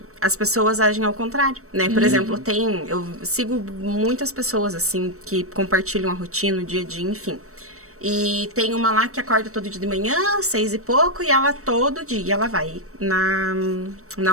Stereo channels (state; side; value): late; left; 0.64 ms